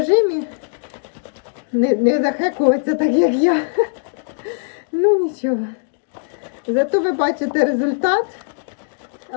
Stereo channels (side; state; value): right; silent; digital silence